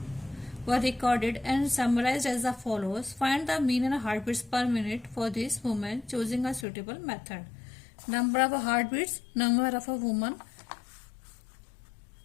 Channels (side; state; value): right; drops out; at 6.7 s